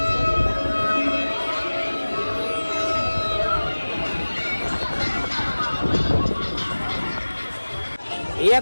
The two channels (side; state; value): both; inverted; correlation -1.00